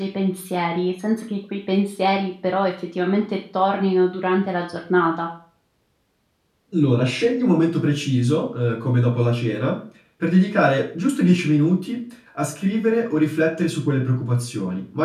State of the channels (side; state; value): both; identical; correlation 1.00